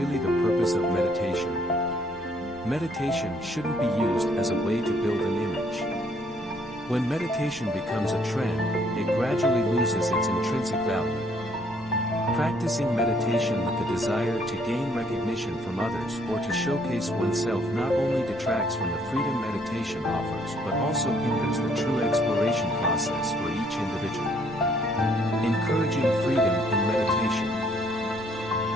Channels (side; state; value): left; noise; rumble, 26 dB below the sound